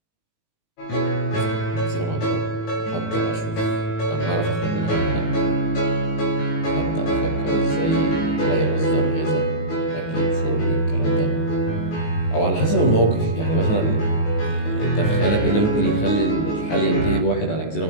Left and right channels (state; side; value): late; right; 19 ms